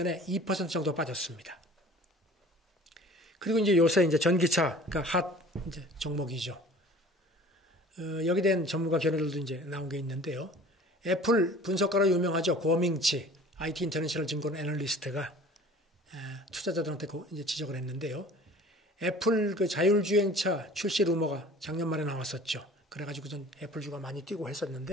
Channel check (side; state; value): both; normal; correlation 0.46